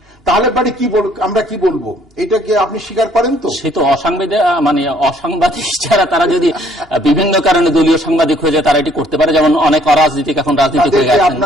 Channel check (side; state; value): both; normal; correlation 0.62